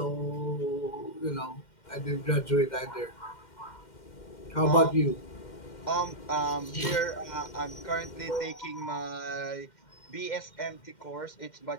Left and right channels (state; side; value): late; right; 2.1 ms